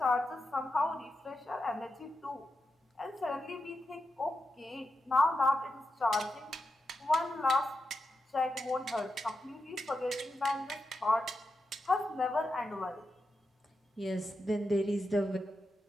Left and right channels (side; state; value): both; normal; correlation 0.88